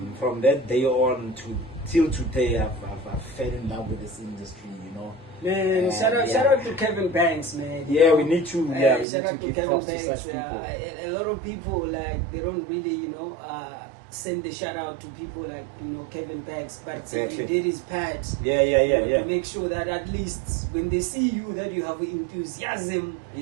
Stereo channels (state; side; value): drops out; left; at 9.1 s